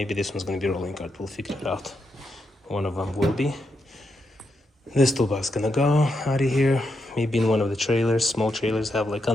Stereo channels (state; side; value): normal; both; correlation 0.83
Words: this one's gonna be rolling cart. We'll figure it out. One of them will be. This toolbox is gonna go out of here. Maybe in one of the trailers. Small trailers have like